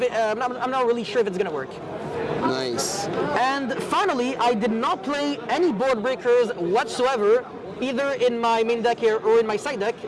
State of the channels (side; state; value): both; identical; correlation 1.00